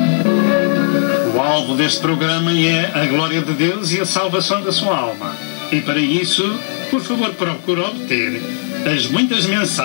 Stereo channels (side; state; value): right; silent; 69 dB below the other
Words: O alvo deste programa é a glória de Deus e a salvação da sua alma. E para isso, por favor, procure obter as muitas